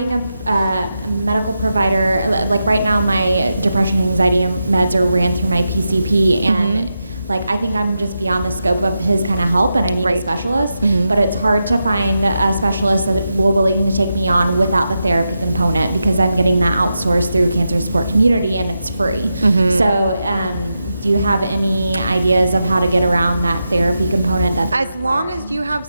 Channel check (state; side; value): inverted; both; correlation -0.88